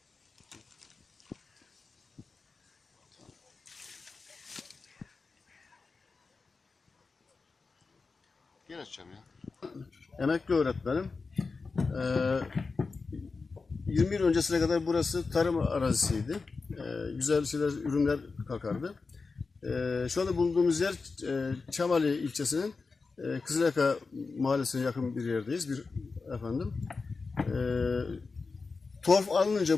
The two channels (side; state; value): right; quieter; 4.3 dB